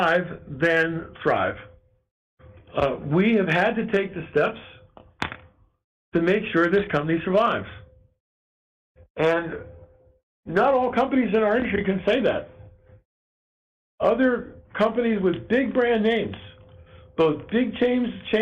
then thrive. We have had to take the steps to make sure this company survives. And not all companies in our industry can say that. Other companies with big brand names, both big chains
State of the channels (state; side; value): identical; both; correlation 1.00